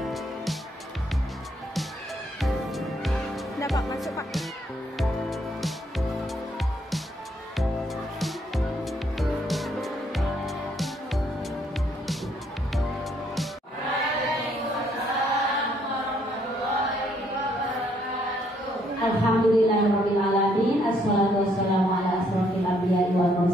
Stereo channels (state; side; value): normal; both; correlation 0.69